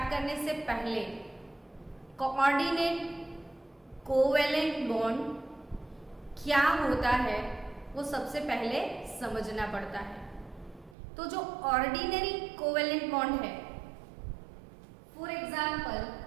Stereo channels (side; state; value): left; drops out; at 11.0 s